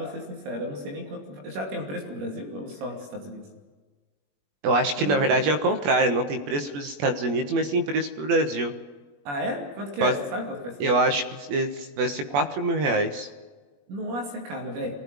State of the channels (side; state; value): left; late; 21 ms